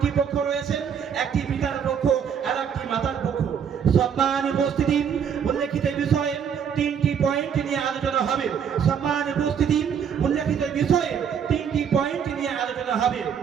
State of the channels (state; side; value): quieter; left; 7.6 dB